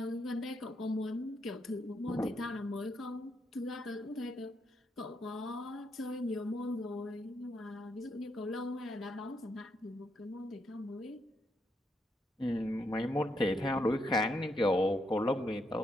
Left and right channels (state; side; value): normal; both; correlation 0.78